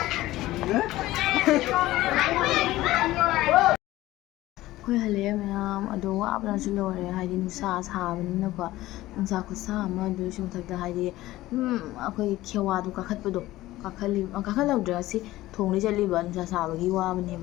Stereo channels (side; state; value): right; quieter; 16.6 dB